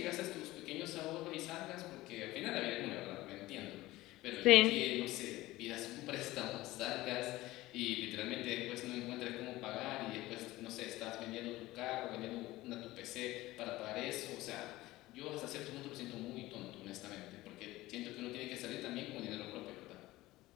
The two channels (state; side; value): quieter; right; 18.0 dB